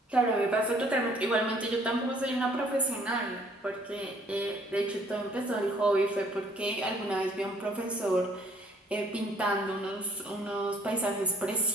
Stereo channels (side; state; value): both; normal; correlation 0.60